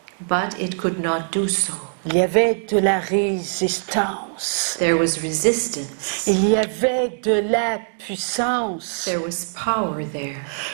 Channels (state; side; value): silent; left; digital silence